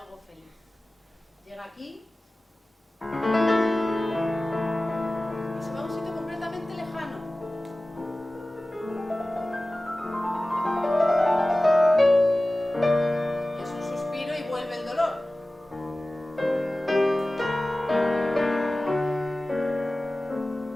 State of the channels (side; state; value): both; normal; correlation 0.97